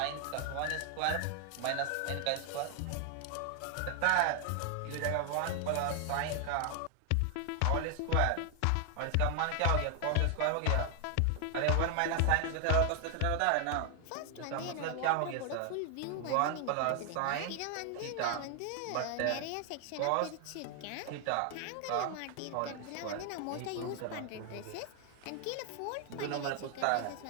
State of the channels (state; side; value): different; both; correlation 0.00